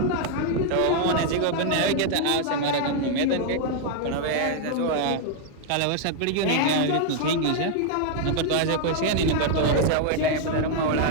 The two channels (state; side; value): different; both; correlation 0.00